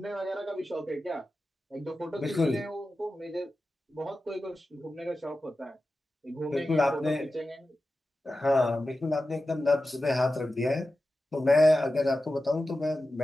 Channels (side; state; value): both; normal; correlation 0.93